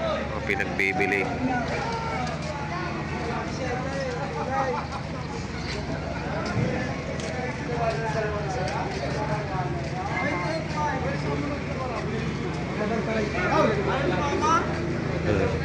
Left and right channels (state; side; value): identical; both; correlation 1.00